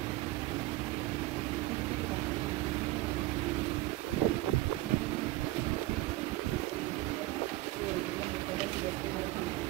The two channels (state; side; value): quieter; left; 18.1 dB